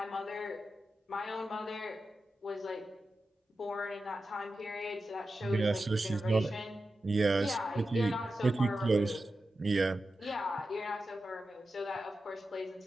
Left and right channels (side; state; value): both; normal; correlation 0.92